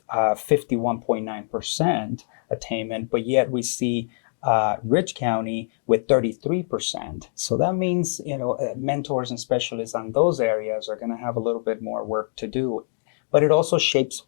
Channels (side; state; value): right; silent; digital silence